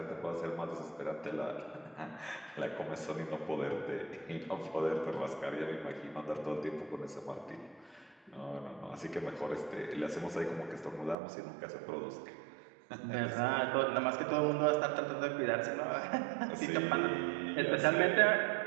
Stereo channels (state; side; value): drops out; left; at 11.2 s